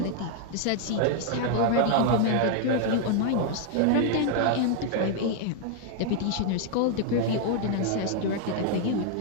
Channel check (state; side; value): different; both; correlation 0.00